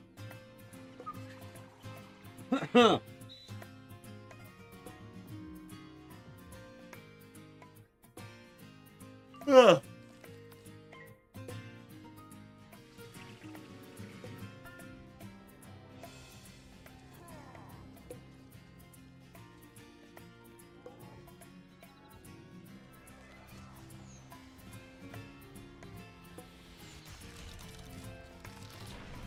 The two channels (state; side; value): identical; both; correlation 1.00